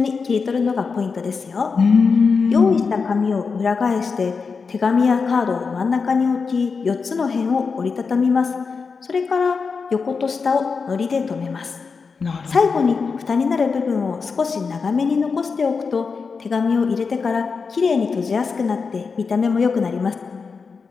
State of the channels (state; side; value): quieter; right; 5.1 dB